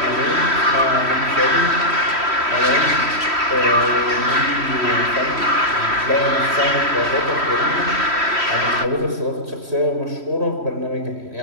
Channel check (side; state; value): left; late; 3.1 ms